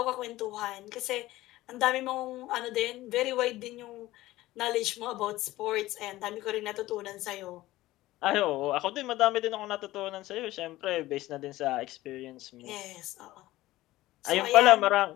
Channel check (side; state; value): right; quieter; 16.9 dB